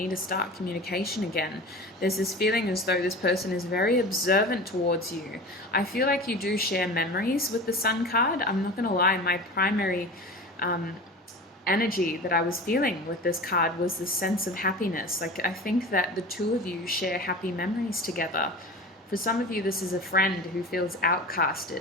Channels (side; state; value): both; normal; correlation 0.34